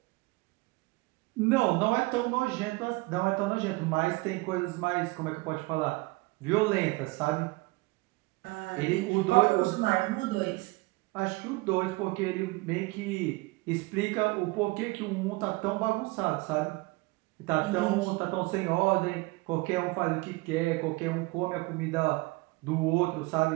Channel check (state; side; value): quieter; left; 23.6 dB